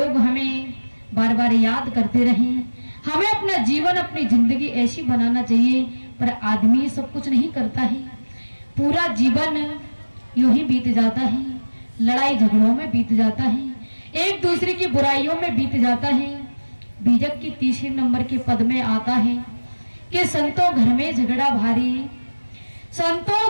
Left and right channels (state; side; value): inverted; both; correlation -1.00